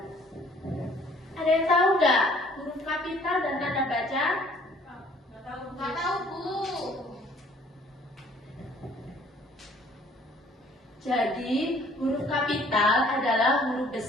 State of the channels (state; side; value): normal; both; correlation 0.57